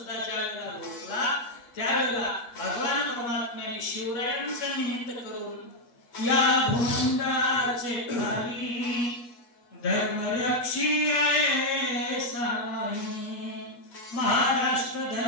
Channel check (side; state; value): right; late; 8.3 ms